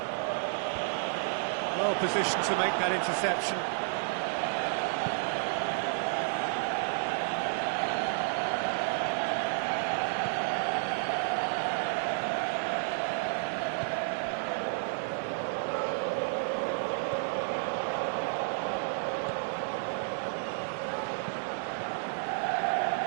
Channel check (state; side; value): silent; left; 57 dB below the other